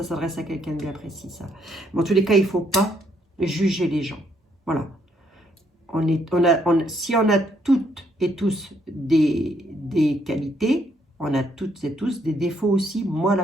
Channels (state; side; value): normal; both; correlation 0.71